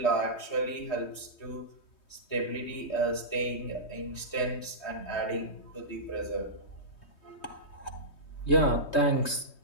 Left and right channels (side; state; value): right; late; 3.2 ms